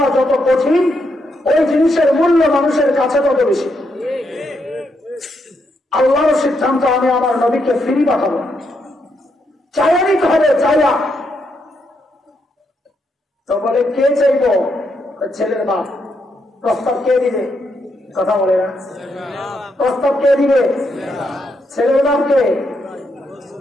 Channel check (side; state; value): both; normal; correlation 0.79